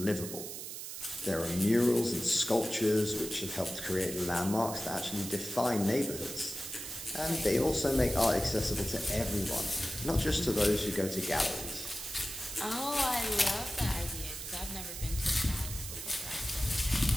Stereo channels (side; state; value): right; noise; hiss, 8 dB below the sound